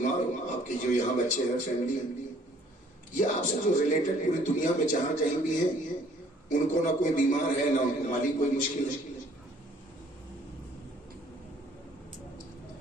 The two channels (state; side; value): normal; both; correlation 0.59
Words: ہو، آپ کے جو یہاں بچے ہیں، فیملی ہیں، یا آپ سے جو ریلیٹڈ پوری دنیا میں جہاں کہیں بھی ہیں، ان کو نہ کوئی بیمار ہے، نہ ان کو مالی کوئی مشکل ہے،